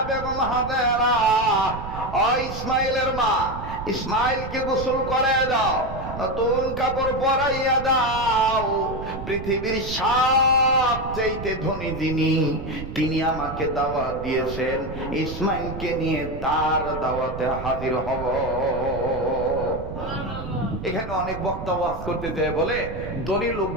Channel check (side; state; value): right; noise; rumble, 9 dB below the sound